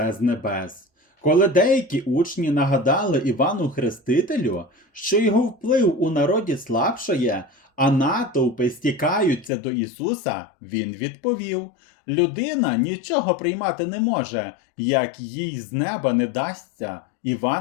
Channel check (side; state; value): right; drops out; at 9.5 s